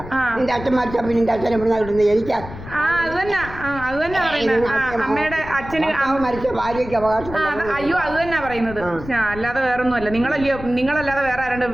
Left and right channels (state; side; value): noise; left; rumble, 13 dB below the sound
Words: നിന്റെ അച്ഛൻ മരിച്ച പിന്നെ നിന്റെ അച്ഛൻ എവിടെ കിട്ടുന്നത്? എനിക്ക് അത് തന്നെ പറയുന്നത്. അമ്മയുടെ അച്ഛന് മരിച്ച ഭാര്യയ്ക്ക് അവകാശം. അയ്യോ, അത് തന്നെ പറയുന്നത്. അല്ലാതെ വേറൊന്നുമല്ല. നിങ്ങളല്ലാതെ വേറെ ആരുടെ